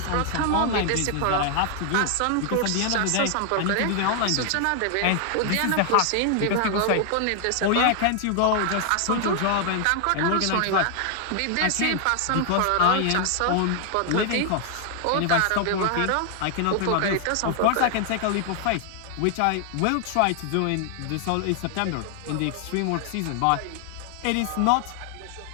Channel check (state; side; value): different; both; correlation 0.00